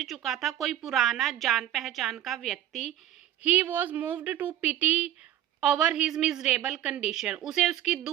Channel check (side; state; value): left; quieter; 12.1 dB